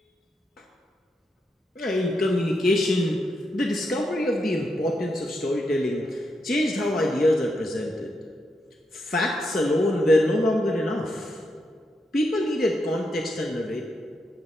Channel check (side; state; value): both; normal; correlation 0.82